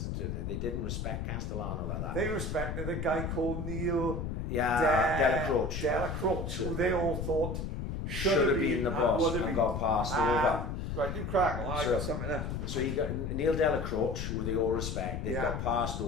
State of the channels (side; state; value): left; noise; rumble, 3 dB below the sound